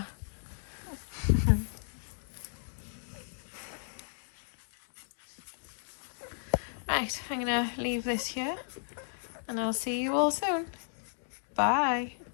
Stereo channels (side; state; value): right; silent; digital silence